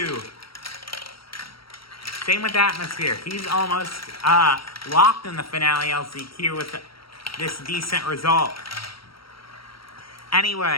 Same with Atmosphere. He's almost locked in the finale LCQ with this decent result.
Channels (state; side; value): late; right; 0.75 ms